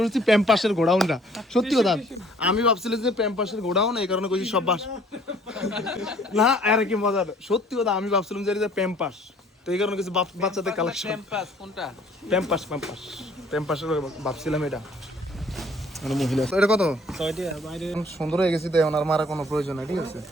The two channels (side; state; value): both; normal; correlation 0.57